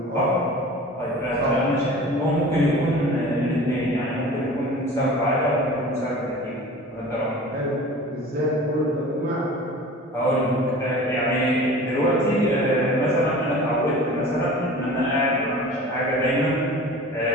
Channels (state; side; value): normal; both; correlation 0.40